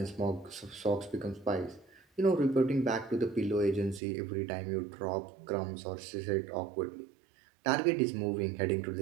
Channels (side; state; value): left; drops out; at 4.0 s